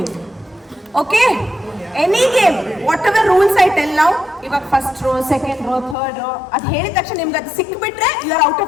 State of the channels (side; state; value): right; drops out; at 6.0 s